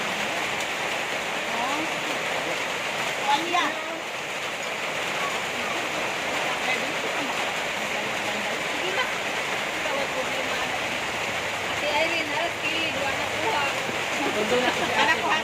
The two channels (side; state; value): both; identical; correlation 1.00